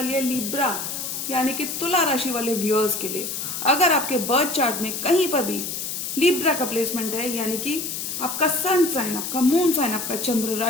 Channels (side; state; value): left; noise; hiss, 4 dB below the sound